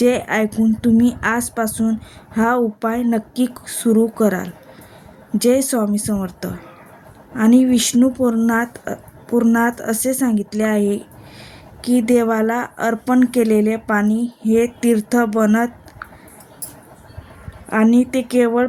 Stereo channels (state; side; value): identical; both; correlation 1.00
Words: ऐकून तुम्ही आजपासून हा उपाय नक्की सुरू कराल. जय स्वामी समर्थ. आणि विष्णू पुराणात असे सांगितले आहे की देवाला अर्पण केलेले पाणी हे तीर्थ बनत आणि ते केवळ